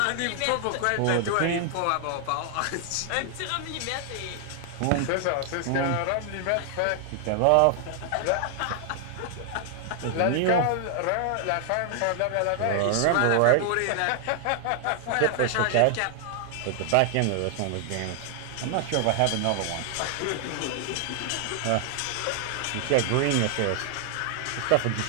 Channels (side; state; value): both; different; correlation 0.00